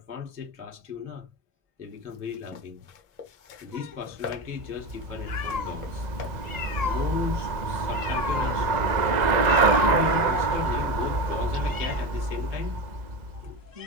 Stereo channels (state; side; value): late; left; 1.9 ms